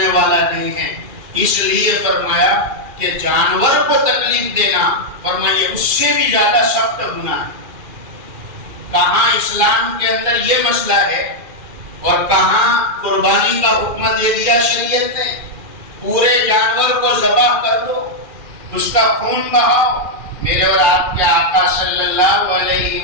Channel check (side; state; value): left; late; 2.4 ms